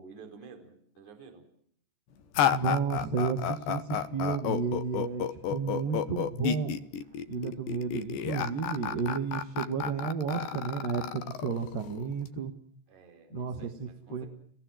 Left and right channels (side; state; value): right; late; 14 ms